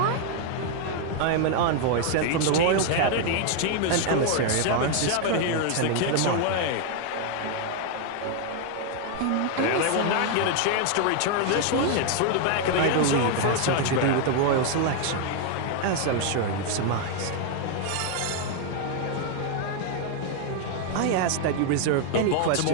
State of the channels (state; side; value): different; both; correlation 0.01